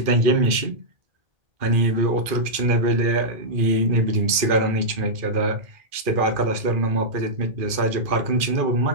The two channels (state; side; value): late; left; 2.4 ms